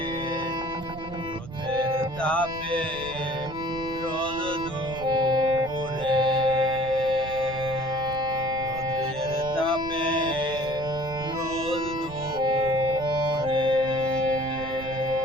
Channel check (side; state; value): right; noise; rumble, 14 dB below the sound